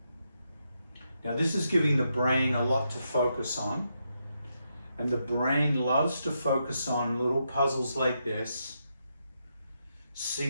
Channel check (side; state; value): both; inverted; correlation -0.82